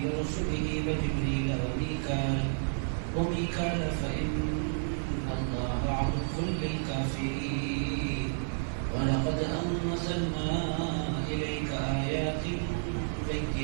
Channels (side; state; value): left; silent; digital silence